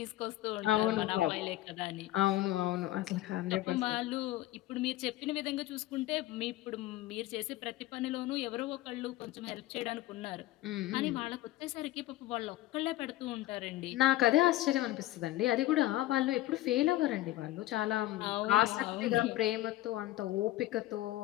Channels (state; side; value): quieter; right; 15.8 dB